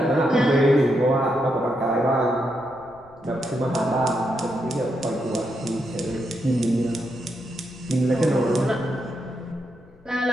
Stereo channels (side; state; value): left; noise; rumble, 26 dB below the sound